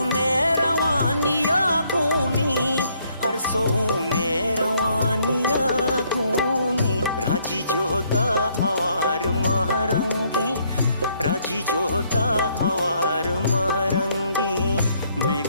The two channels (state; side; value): inverted; both; correlation -0.69